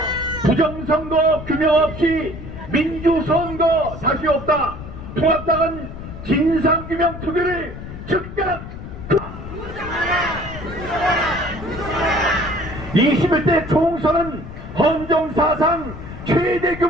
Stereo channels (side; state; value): left; noise; rumble, 11 dB below the sound